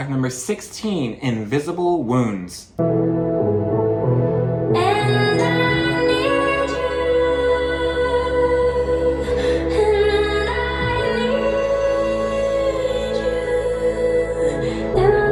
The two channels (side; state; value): both; identical; correlation 1.00